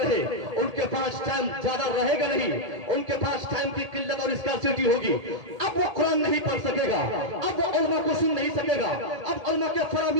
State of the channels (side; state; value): left; late; 1.8 ms